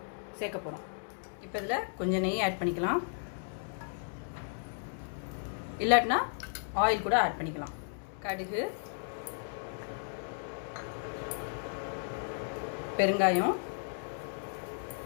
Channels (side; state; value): right; silent; digital silence